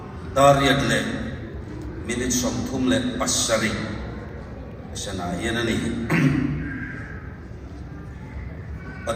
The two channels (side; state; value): both; identical; correlation 1.00